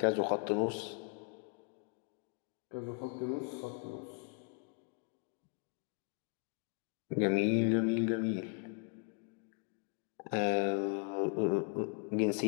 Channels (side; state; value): right; quieter; 37.0 dB